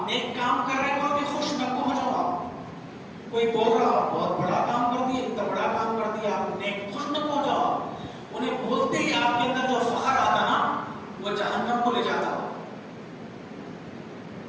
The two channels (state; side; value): identical; both; correlation 1.00